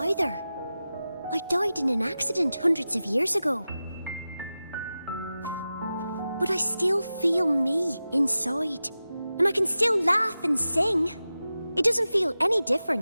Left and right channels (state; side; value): inverted; both; correlation -0.94